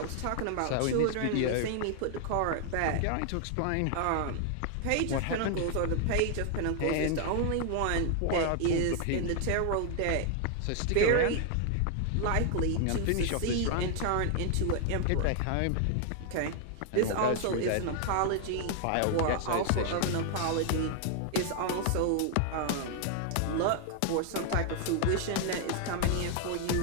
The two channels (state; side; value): different; both; correlation 0.00